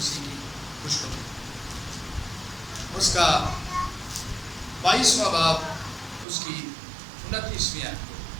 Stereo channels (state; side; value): drops out; left; at 6.2 s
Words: کی خوشخبری، اس کا 22واں باب، اس کی 29ویں آیت کو